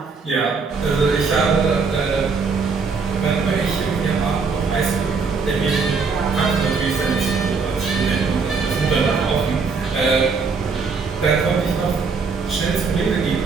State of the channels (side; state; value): left; quieter; 4.9 dB